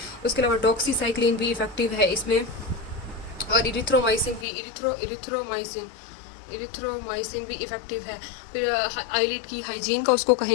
उसके अलावा डॉक्सीसाइक्लिन भी इफेक्टिव है इसमें, और इरिथ्रोमाइसिन भी इरिथ्रोमाइसिन भी इफेक्टिव है। फिर आईलिड की हाइजीन का उसको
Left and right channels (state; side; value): drops out; right; at 4.5 s